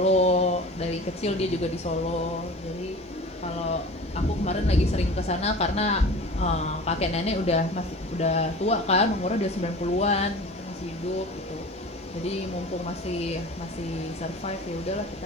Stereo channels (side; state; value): both; normal; correlation 0.38